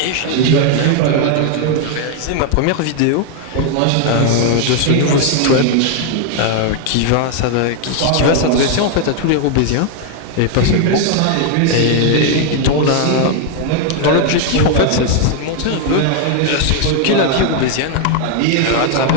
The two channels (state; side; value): different; both; correlation 0.00